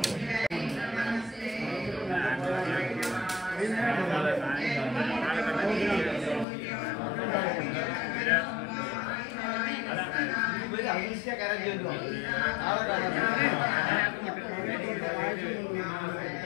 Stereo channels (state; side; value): drops out; right; at 6.5 s